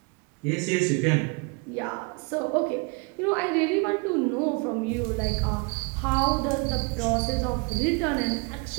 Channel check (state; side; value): quieter; left; 31.1 dB